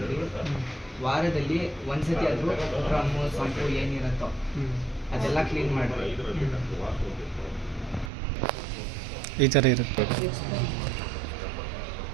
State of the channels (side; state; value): left; drops out; at 8.1 s